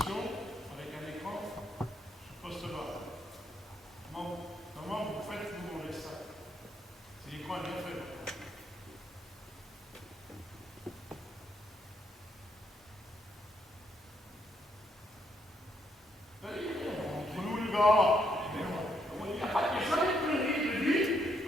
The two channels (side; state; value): both; normal; correlation 0.75